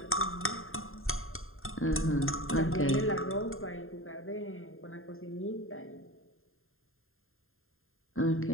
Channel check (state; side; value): late; right; 0.61 ms